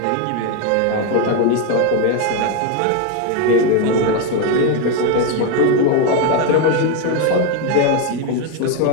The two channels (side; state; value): both; different; correlation 0.02